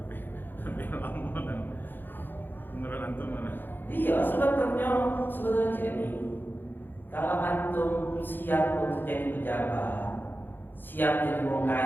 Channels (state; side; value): late; right; 0.095 ms